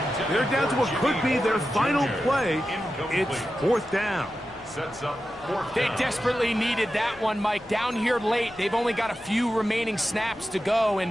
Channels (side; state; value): left; noise; rumble, 27 dB below the sound